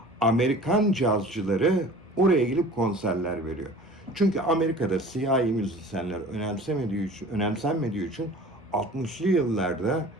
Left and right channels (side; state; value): both; normal; correlation 0.43